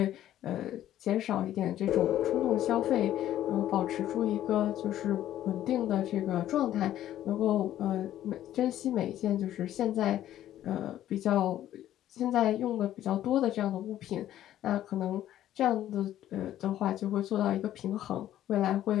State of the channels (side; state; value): right; quieter; 12.4 dB